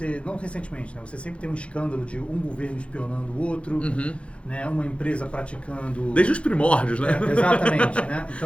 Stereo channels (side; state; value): right; late; 0.060 ms